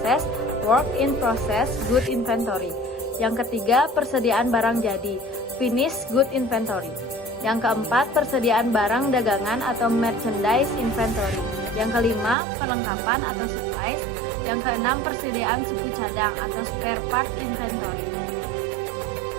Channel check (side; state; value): left; drops out; at 12.4 s